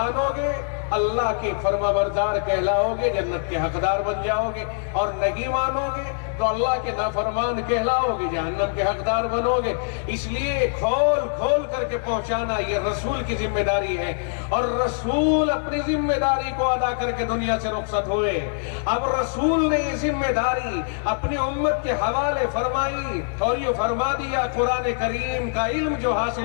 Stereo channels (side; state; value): right; silent; digital silence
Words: گے اللہ کے فرما بردار کہلاؤ گے، جنت کے حقدار بن جاؤ گے، اور نہیں مانو گے تو اللہ کے نافرمان کہلاؤ گے، جہنم کے حقدار بنو گے۔ اس لیے کھول کھول کر کے پہنچانا یہ رسول کی ذمہ داری ہے، اور رسول اپنی ذمہ داری کو ادا کر کے دنیا سے رخصت ہوئے۔ اب رسول نے یہ ذمہ داری اپنی امت کے حوالے فرمائی اور یہ فرما دیا قرآن کریم کا علم جو